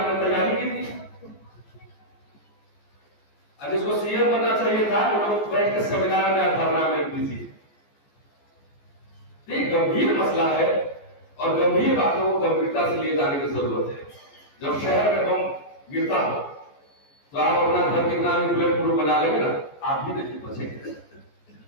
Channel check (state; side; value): late; right; 14 ms